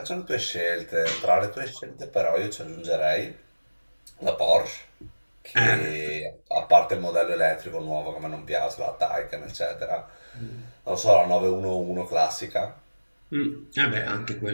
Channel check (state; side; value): inverted; both; correlation -1.00